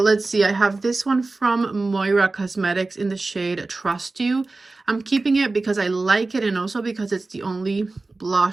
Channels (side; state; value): left; quieter; 3.4 dB